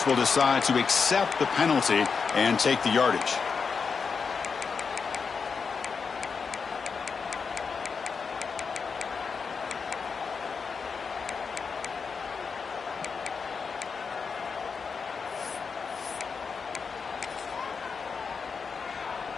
will decide to accept the penalty and take the yardage.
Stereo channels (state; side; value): quieter; right; 5.5 dB